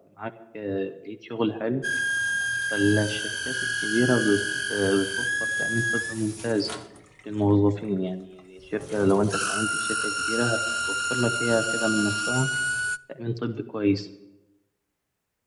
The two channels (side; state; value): both; identical; correlation 1.00